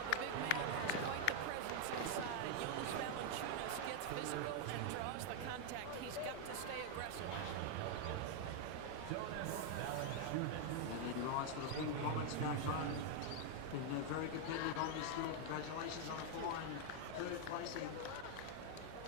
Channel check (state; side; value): different; both; correlation 0.00